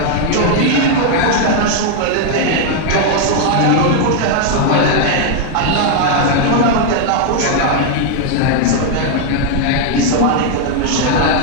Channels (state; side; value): different; both; correlation 0.00